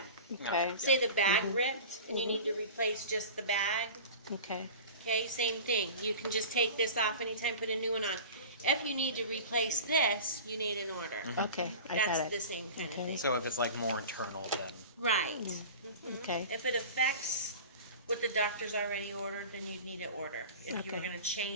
Okay. Say the bag ripped and you need to replace just the bag. Okay. Okay, same thing. You can just take this off anytime, put a new one on. If you need to replace this, you need an order. Okay. I That's got the it. same kind of Okay. thing. So if it's like more internal, then Right. Okay. If it affects what the doctor's already ordered, then you'd need an order. If you were Okay. going to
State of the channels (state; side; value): inverted; both; correlation -0.36